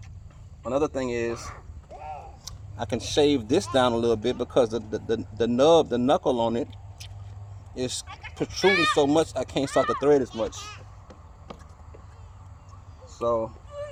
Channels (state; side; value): identical; both; correlation 1.00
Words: Another thing is I can shave this down a little bit because the nub, the knuckle on it is protruding so much I can't start the thread as much. So